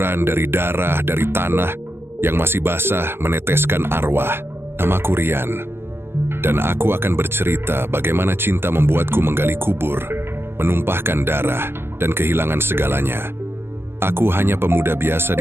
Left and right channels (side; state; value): left; late; 0.11 ms